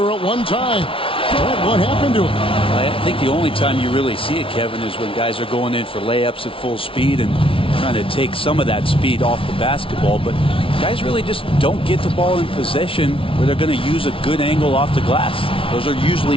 at one time. What happened to him? I think the only time you really see it, Kevin, is when guys are going in for layups at full speed and trying to take some of that speed off the basketball. But guys really just don't get the ball in possession where they're going to use a good angle off the glass. Those are usually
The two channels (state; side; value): late; right; 0.26 ms